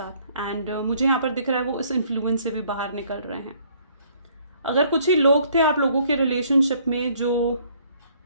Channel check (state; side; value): inverted; both; correlation -0.62